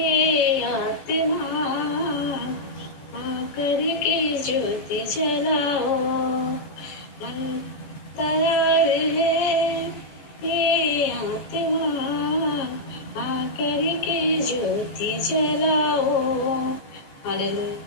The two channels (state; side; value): late; right; 14 ms